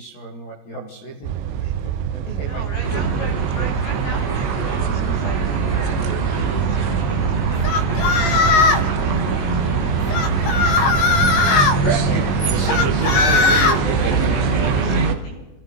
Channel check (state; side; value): late; right; 22 ms